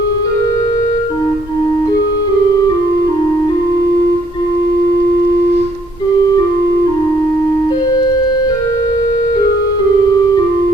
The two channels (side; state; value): both; normal; correlation 0.67